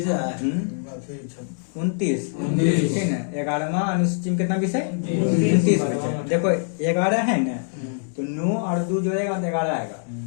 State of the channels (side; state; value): right; silent; digital silence